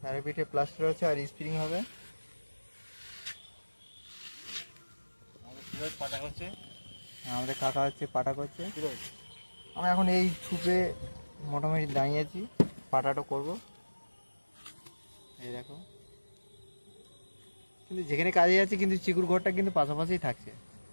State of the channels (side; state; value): both; inverted; correlation -1.00